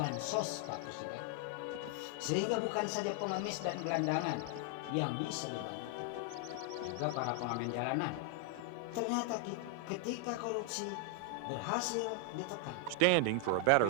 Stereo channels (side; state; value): both; different; correlation 0.00